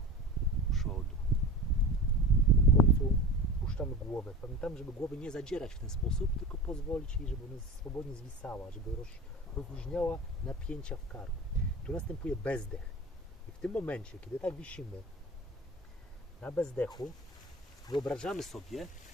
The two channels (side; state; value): both; normal; correlation 0.33